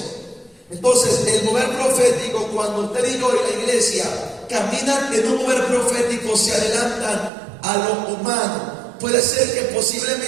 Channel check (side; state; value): left; drops out; at 7.3 s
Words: Entonces, el mover profético, cuando usted y yo y la iglesia caminan en un mover profético, se adelantan a lo humano. Puede ser que